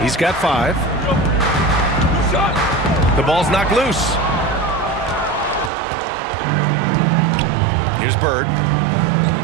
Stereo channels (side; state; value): left; drops out; at 5.7 s